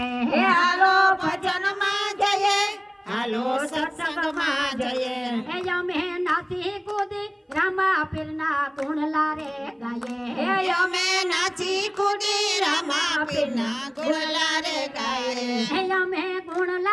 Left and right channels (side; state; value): both; identical; correlation 1.00